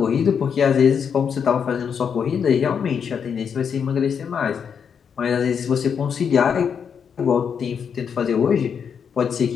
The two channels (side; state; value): right; quieter; 7.1 dB